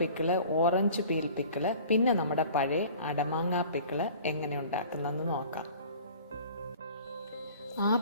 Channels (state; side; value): inverted; both; correlation -0.45